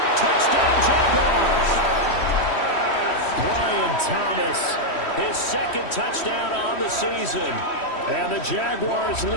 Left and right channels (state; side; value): late; right; 3.1 ms